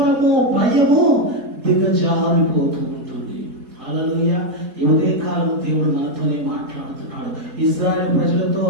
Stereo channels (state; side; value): late; left; 4.7 ms